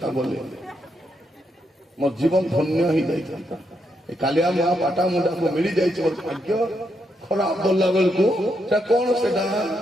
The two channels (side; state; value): both; normal; correlation 0.80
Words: ବୋଲେ ମୋ ଜୀବନ ଧନ୍ୟ ହେଇଯାଇଥାନ୍ତା। ଏ କାଲିଆ ମା ପାଟା ମୁଣ୍ଡାକୁ ମିଳି ଯାଇଛି, ମୋର ଭାଗ୍ୟ ଖରାପ ଗଲା ବେଳକୁ ସେଟା କଣ? ସେଟା